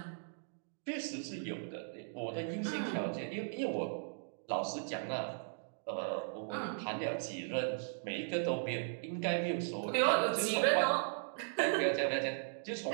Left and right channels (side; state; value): left; silent; digital silence